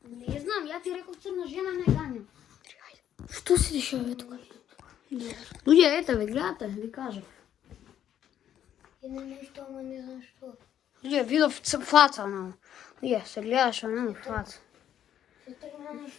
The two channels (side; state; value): right; quieter; 10.4 dB